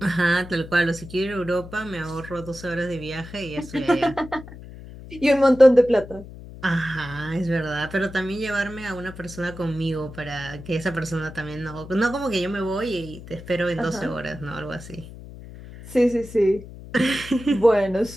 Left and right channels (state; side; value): noise; left; hum, 15 dB below the sound